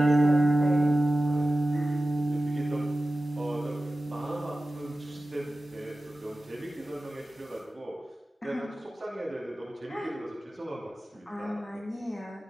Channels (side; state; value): both; normal; correlation 0.96